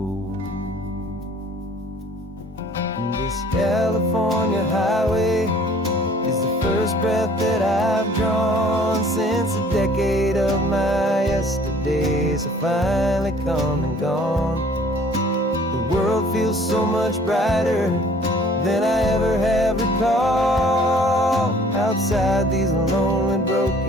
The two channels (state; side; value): normal; both; correlation 0.54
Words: And this California highway is the first breath that I've drawn since a decade of my yesterdays have finally come and gone. The world feels so much brighter than I ever have recalled. Outside these lonely,